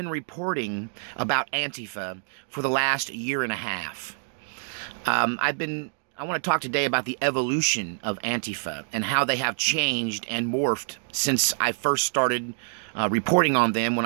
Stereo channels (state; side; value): silent; left; digital silence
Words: reporting about Antifa for the last year and a half. I want to talk today about the evolution of Antifa and how they have changed and morphed since I first started reporting on them when